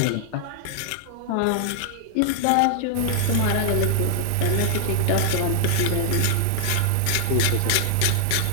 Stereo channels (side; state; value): both; different; correlation 0.00